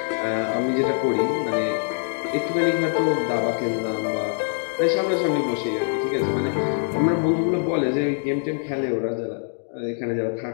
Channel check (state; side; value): silent; right; digital silence